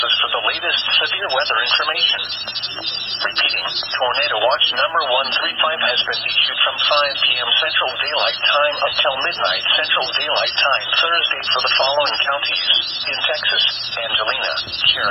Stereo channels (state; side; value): identical; both; correlation 1.00